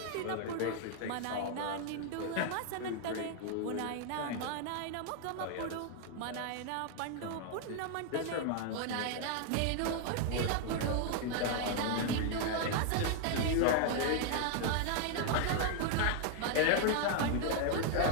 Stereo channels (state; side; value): different; both; correlation 0.00